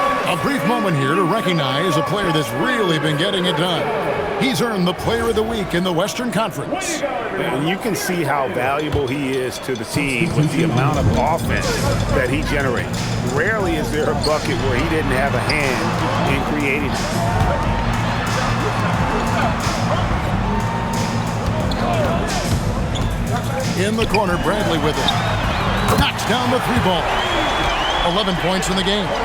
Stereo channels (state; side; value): identical; both; correlation 1.00